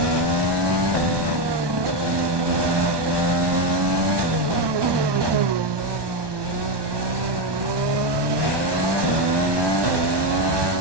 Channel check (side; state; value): left; late; 1.2 ms